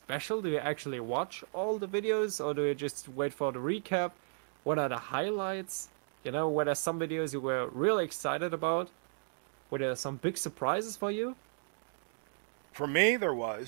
Do you actually watch all the videos, or do you just wait for the recap? What are the highlights? Were there some videos you were really excited about? Were there some big surprises for you? For me, there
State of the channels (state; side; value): silent; left; digital silence